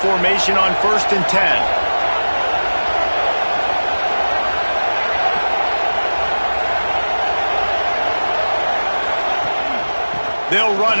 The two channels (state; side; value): inverted; both; correlation -1.00